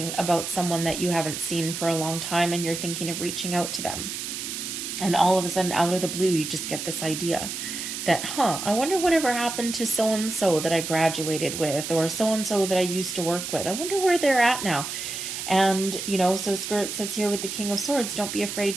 about someone that you haven't seen for a long time and you're thinking of reaching out to them. And all of a sudden, out of the blue, you just get this idea that, I wonder whatever happened to so-and-so that I graduated with, or so-and-so that I used to work with. I wonder where they're at now. And, so Spirit says here with the King of Swords, don't be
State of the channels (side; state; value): right; noise; hiss, 6 dB below the sound